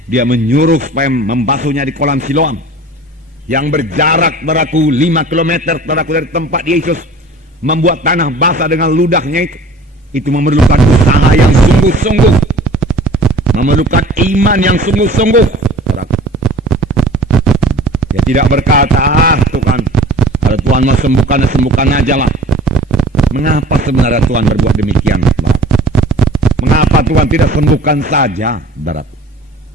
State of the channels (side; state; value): both; normal; correlation 0.44